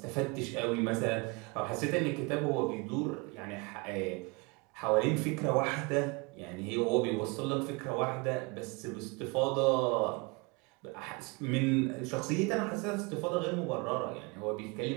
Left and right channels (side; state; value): left; quieter; 28.7 dB